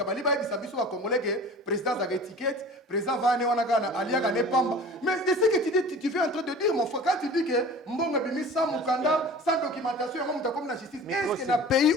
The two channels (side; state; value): both; normal; correlation 0.41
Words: ba bisa biso ba congolais que président za étiquette, président va wana kana aliaka ne pamba. Mais c'est ce que tu dis, tu es en train de dire mon frère quand tu dis que mbongo bimi sans mukanda, sans documentation ya muta comme la justice. Est-ce que na pays